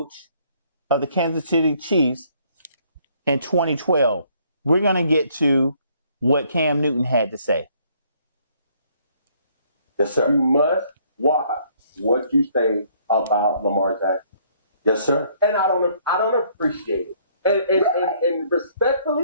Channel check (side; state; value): both; inverted; correlation -0.64